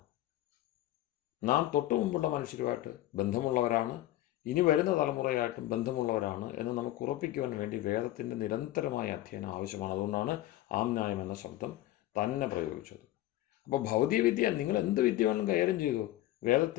നാം തൊട്ടു മുമ്പുള്ള മനുഷ്യരുമായിട്ട് ബന്ധമുള്ളവരാണ്, ഇനി വരുന്ന തലമുറയായിട്ടും ബന്ധമുള്ളവരാണ് എന്ന് നമുക്ക് ഉറപ്പിക്കുവാൻ വേണ്ടി വേദത്തിൻ്റെ നിരന്തരമായ അധ്യയനം ആവശ്യമാണ്. അതുകൊണ്ടാണ് ആംനായം എന്ന ശബ്ദം തന്നെ പ്രയോഗിച്ചത്. അപ്പോൾ ഭൗതിക വിദ്യ, നിങ്ങൾ എന്ത് വിദ്യ വേണമെങ്കിലും കൈകാര്യം ചെയ്തു,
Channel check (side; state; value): right; quieter; 15.2 dB